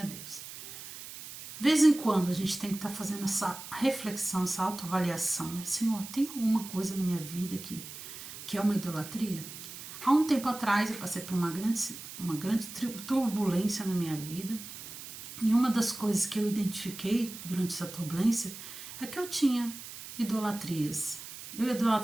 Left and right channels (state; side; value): noise; right; hiss, 12 dB below the sound